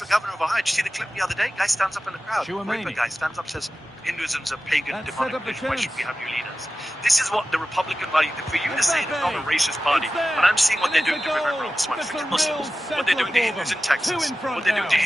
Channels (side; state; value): both; normal; correlation 0.94